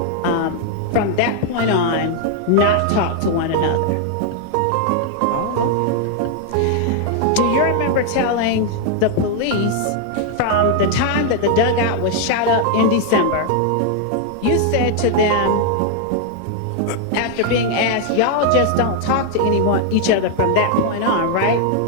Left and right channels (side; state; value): both; different; correlation 0.00